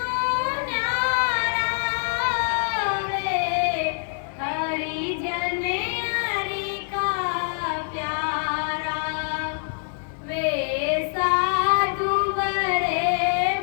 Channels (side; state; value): right; silent; digital silence